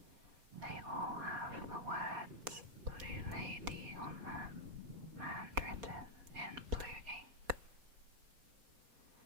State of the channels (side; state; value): left; late; 4.2 ms